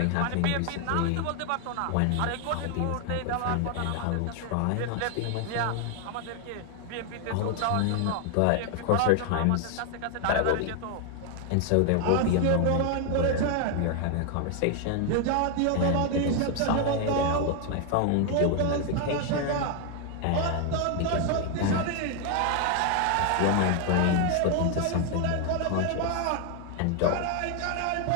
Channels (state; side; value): different; both; correlation 0.00